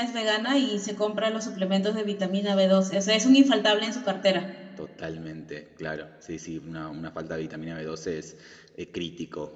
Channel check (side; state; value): both; identical; correlation 1.00